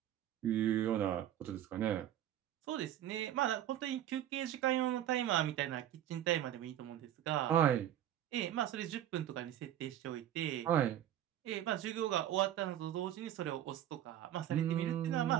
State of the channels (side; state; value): left; quieter; 11.6 dB